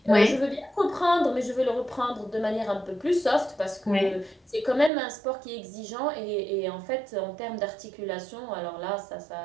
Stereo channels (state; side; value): drops out; left; at 4.9 s